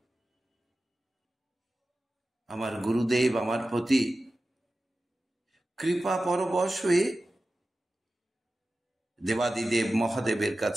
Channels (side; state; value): both; normal; correlation 0.94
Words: আমার গুরুদেব আমার প্রতি কৃপা পরবশ হয়ে দেবাদিদেব মহাদেবের